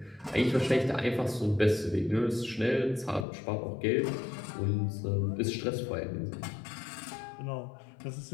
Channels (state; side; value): drops out; right; at 3.2 s